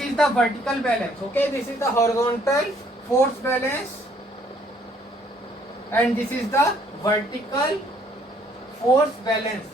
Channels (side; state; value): both; normal; correlation 0.64